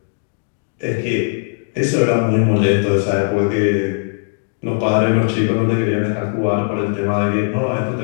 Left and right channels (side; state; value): right; silent; digital silence